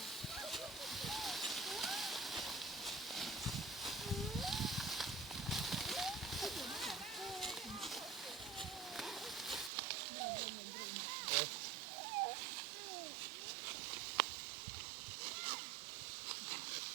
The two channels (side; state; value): left; drops out; at 9.7 s